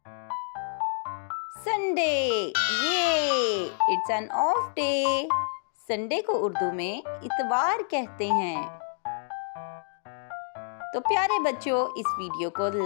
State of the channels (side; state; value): right; silent; digital silence